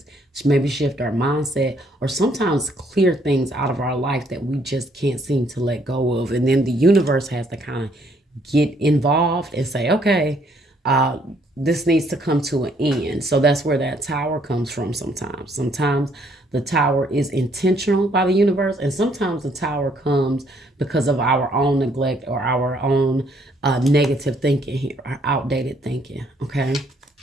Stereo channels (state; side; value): normal; both; correlation 0.67